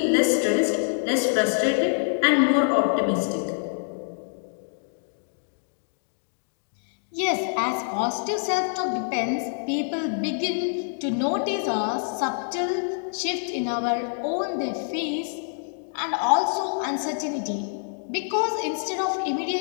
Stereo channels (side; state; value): right; silent; digital silence